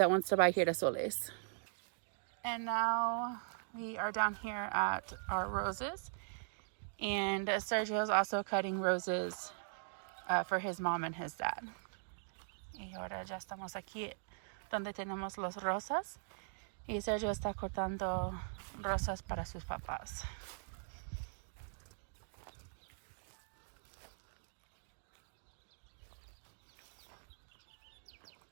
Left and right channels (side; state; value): left; silent; digital silence